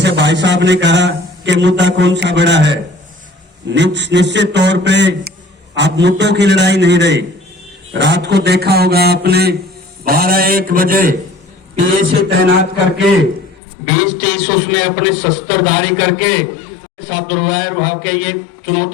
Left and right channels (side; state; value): right; drops out; at 13.6 s